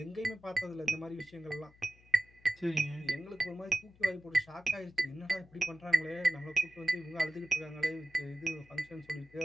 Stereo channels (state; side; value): noise; left; hum, 27 dB below the sound